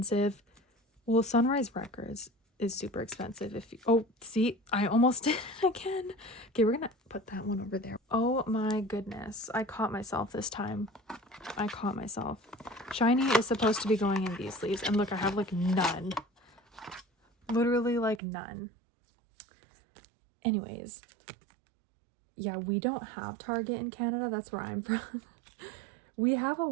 Well, Sunrise Records is super expensive. Oh, see, I almost did it again. Okay, we're gonna put that one over there. Oh my goodness, I caught myself this time. I caught myself. Shiny is supposed to be going in these sleeves, and look, I have like none. Literally like none. Anyways, yeah, we don't have Target in Canada. That's where I'm from. We have a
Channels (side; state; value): left; drops out; at 18.2 s